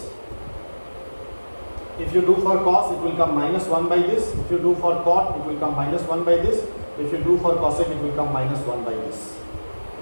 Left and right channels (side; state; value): both; inverted; correlation -1.00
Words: If you do for cos, it will come minus 1 by this. If you do for cot, it will come minus 1 by this. If you do for cosec, it will come minus 1 by this.